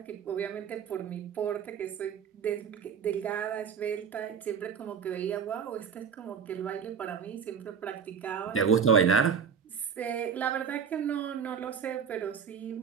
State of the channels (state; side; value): quieter; left; 7.0 dB